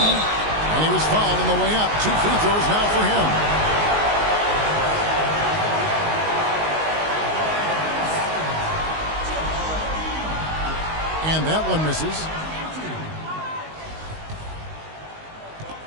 And he was fouled on the way up. 2 free throws now for him. And that one misses.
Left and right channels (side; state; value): left; late; 19 ms